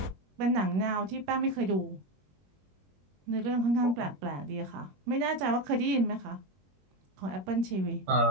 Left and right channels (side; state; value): left; late; 21 ms